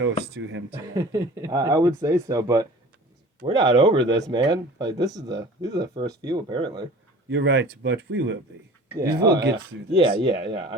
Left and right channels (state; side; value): normal; both; correlation 0.42